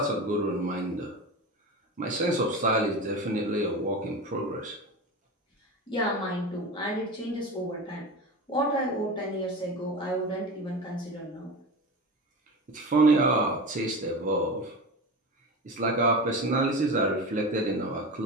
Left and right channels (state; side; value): normal; both; correlation 0.27